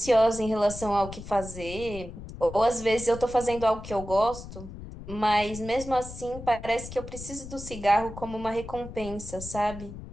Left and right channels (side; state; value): left; noise; rumble, 12 dB below the sound